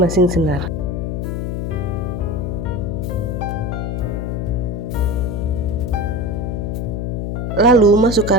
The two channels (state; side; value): noise; left; hum, 2 dB below the sound